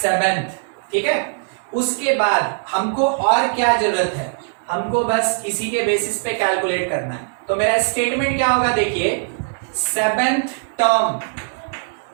ठीक है, उसके बाद हमको और क्या जरूरत है, हमको बस इसी के बेसिस पे कैलकुलेट करना है। तो मेरा स्टेटमेंट क्या होगा देखिए, 7th term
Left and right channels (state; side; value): silent; left; 64 dB below the other